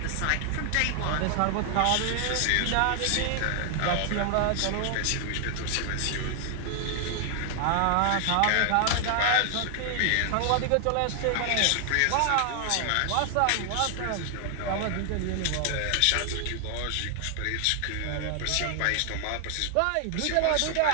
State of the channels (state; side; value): different; both; correlation 0.00